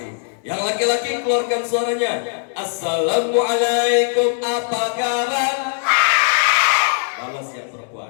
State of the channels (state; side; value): silent; right; digital silence